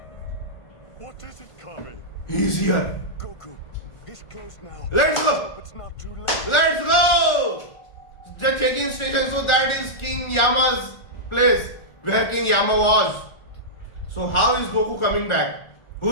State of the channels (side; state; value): right; late; 1.4 ms